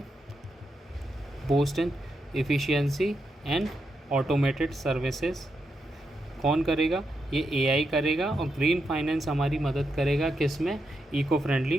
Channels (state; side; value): normal; both; correlation 0.84